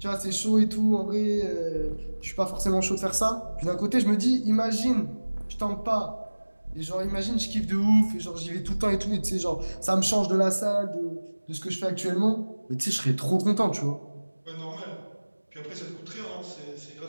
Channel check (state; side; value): inverted; both; correlation -1.00